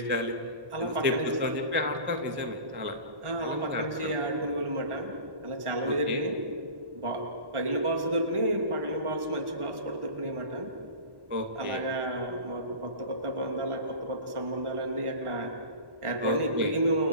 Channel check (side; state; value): left; late; 1.1 ms